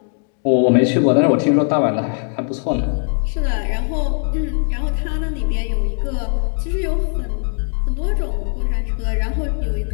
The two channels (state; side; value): silent; right; 60 dB below the other